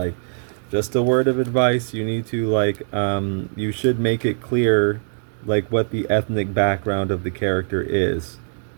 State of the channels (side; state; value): left; silent; digital silence